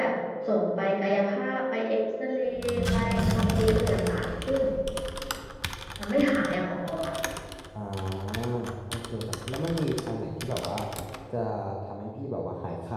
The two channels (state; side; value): identical; both; correlation 1.00